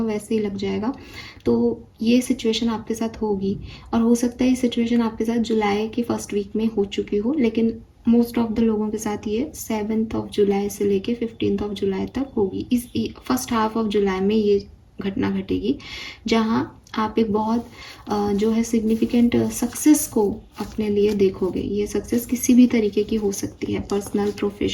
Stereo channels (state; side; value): identical; both; correlation 1.00